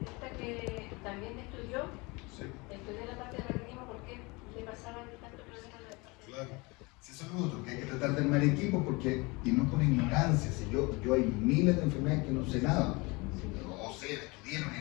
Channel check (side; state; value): right; quieter; 25.9 dB